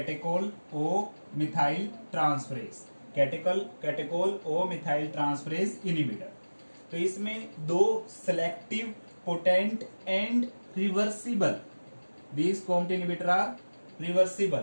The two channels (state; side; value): inverted; both; correlation -1.00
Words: O methyl transferase, catechol O methyl transferase inhibitor. तो इसमें दो selective, potent and reversible, these COMT inhibitor are